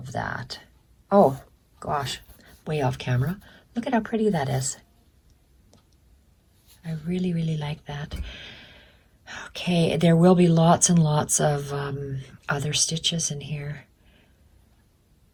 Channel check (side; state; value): both; identical; correlation 1.00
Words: that. Oh gosh, way off camera. Look at how pretty that is. I really, really like that. Okay, there will be lots and lots of other stitches in here,